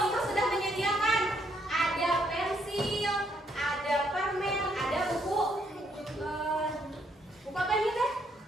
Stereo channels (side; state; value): both; normal; correlation 0.72